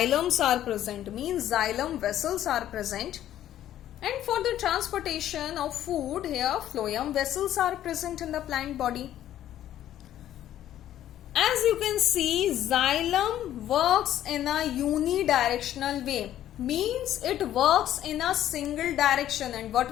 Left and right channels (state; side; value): quieter; right; 12.0 dB